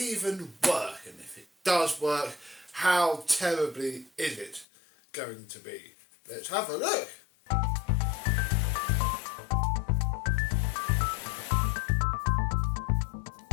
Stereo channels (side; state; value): right; drops out; at 4.7 s